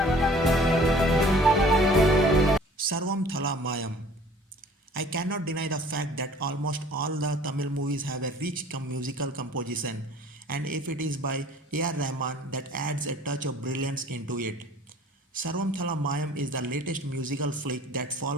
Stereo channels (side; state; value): both; normal; correlation 0.51